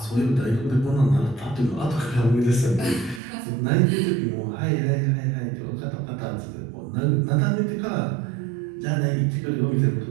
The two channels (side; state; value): left; drops out; at 3.2 s